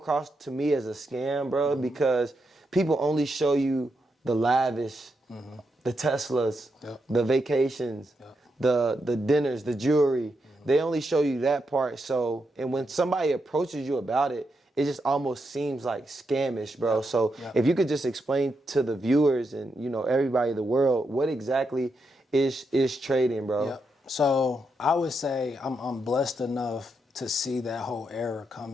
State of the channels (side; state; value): both; normal; correlation 0.83